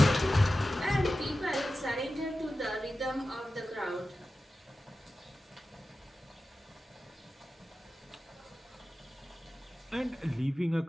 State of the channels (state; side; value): normal; both; correlation 0.94